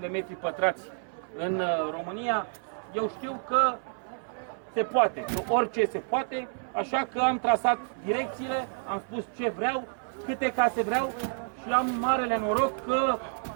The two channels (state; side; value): silent; left; 58 dB below the other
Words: metri pătrați în România. Eu știu că se poate, orice se poate, așa că am trasat direcțiile, am spus ce vreau, câte case vreau și am marele noroc că